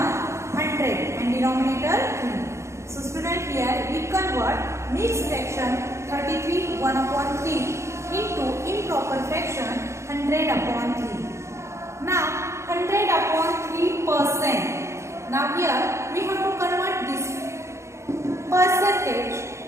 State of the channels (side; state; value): left; late; 0.14 ms